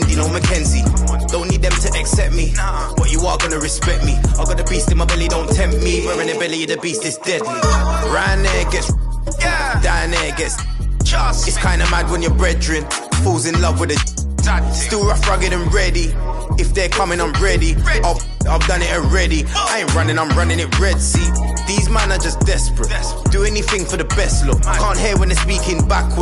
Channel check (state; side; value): identical; both; correlation 1.00